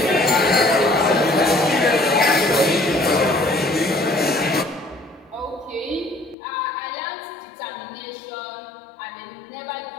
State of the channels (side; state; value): right; drops out; at 6.4 s